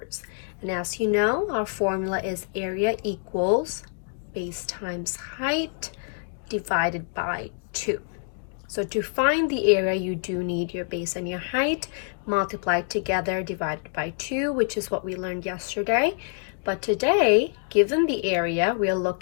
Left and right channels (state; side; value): silent; right; 61 dB below the other